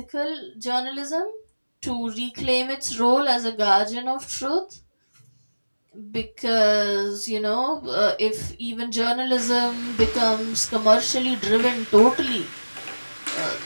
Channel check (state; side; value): inverted; both; correlation -1.00